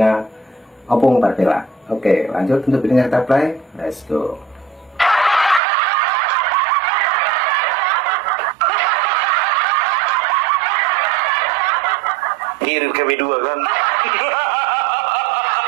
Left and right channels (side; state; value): left; drops out; at 5.6 s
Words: Opung Marvelak. Oke, lanjut untuk videonya kita play. Let's go. Kirim kami dua kan.